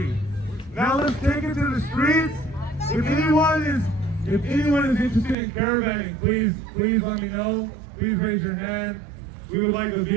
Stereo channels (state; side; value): drops out; left; at 5.4 s